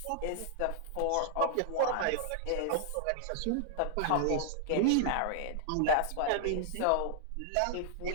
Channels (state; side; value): different; both; correlation -0.01